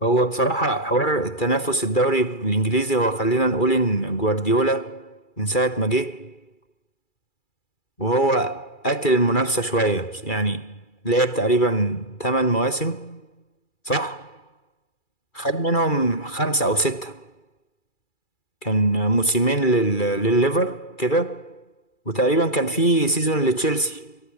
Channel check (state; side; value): late; right; 2.3 ms